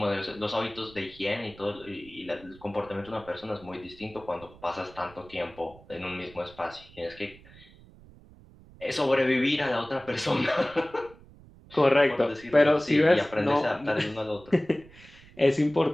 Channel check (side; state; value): right; noise; rumble, 23 dB below the sound